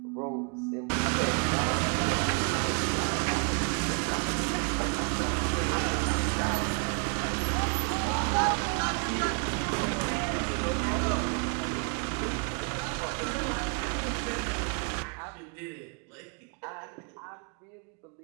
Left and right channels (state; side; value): quieter; left; 37.8 dB